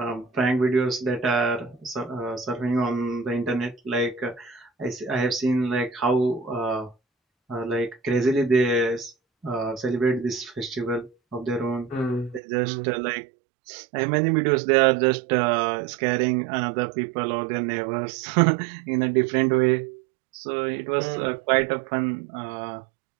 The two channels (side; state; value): left; drops out; at 12.4 s